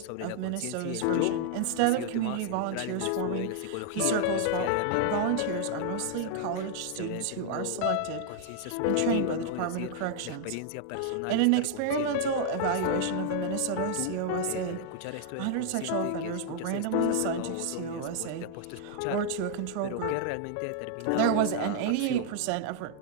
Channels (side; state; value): both; different; correlation 0.00